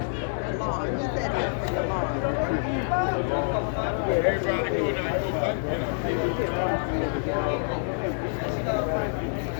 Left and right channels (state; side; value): silent; right; digital silence